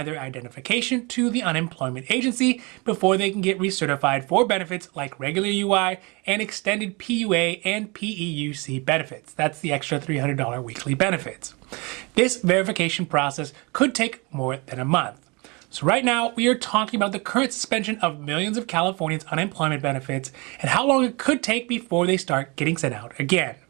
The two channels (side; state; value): left; quieter; 28.0 dB